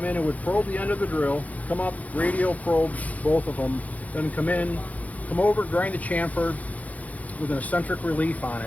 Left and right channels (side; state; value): right; late; 0.073 ms